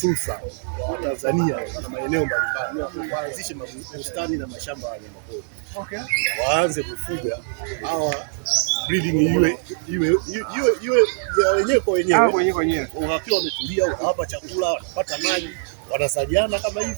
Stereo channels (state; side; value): silent; left; digital silence